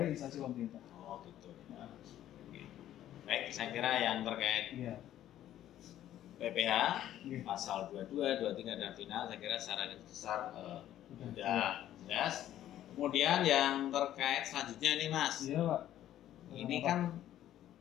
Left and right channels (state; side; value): quieter; right; 12.3 dB